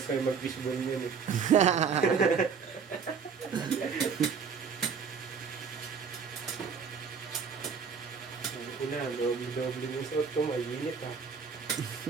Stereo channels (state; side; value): quieter; left; 6.1 dB